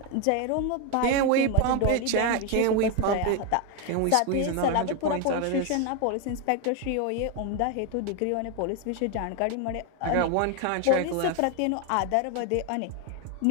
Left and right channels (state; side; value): different; both; correlation 0.01